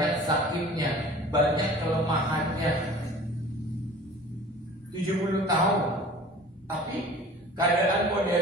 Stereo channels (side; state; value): both; normal; correlation 0.44